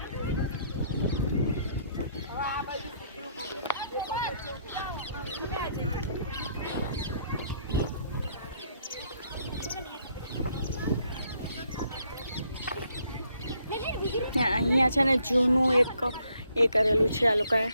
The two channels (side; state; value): both; inverted; correlation -0.70